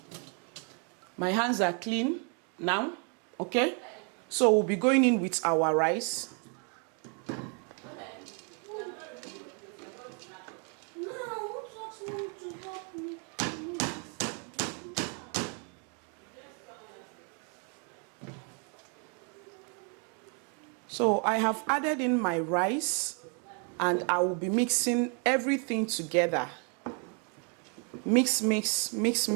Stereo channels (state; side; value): quieter; left; 38.8 dB